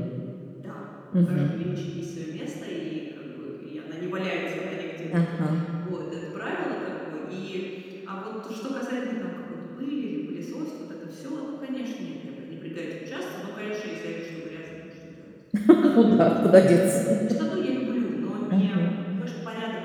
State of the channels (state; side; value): identical; both; correlation 1.00